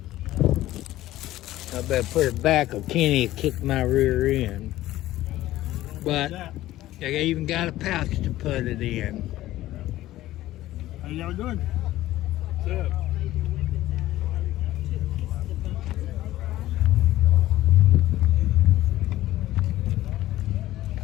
I better put it back or Kenny will kick my rear end. But they even got a pouch to put it in. How y'all doing? What's up?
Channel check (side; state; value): right; quieter; 15.3 dB